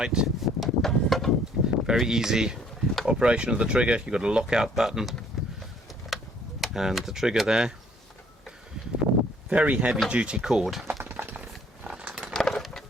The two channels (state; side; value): normal; both; correlation 0.60